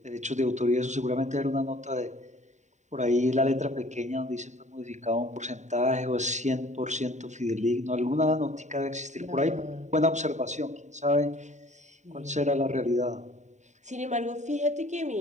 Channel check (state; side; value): late; left; 0.34 ms